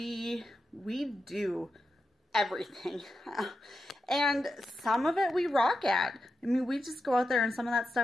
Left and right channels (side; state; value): both; normal; correlation 0.88